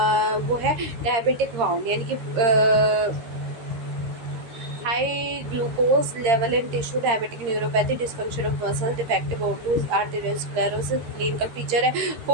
वो है डायबिटिक वाउंड, यानी कि high glucose level in tissue, diabetic neuropathy, dysfunction of muscle, defective O2, arteriosclerosis। clinical feature है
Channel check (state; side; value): late; left; 13 ms